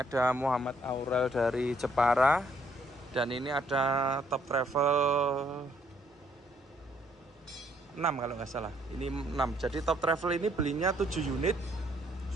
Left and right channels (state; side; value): normal; both; correlation 0.68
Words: Muhammad Aurel dari Jepara, dan ini ada Top Travel 6 kalau nggak salah, ini 6. Jadi Top Travel ini belinya 7 unit,